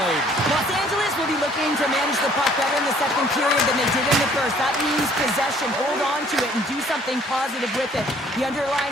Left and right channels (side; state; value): both; normal; correlation 0.58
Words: Los Angeles will be looking to manage the puck better in the second period than they did in the first. That means possession, hold on to it, and do something positive with it. The